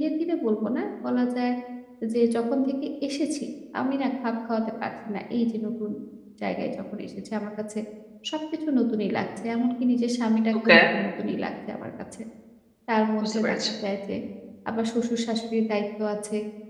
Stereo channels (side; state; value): both; identical; correlation 1.00